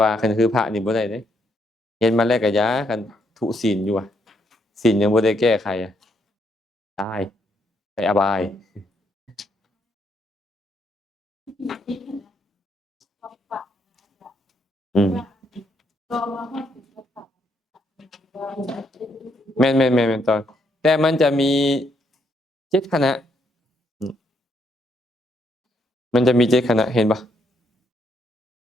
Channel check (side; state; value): both; normal; correlation 0.74